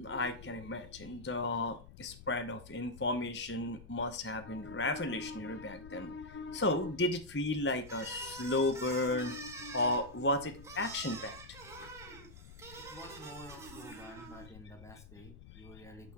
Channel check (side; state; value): left; noise; rumble, 17 dB below the sound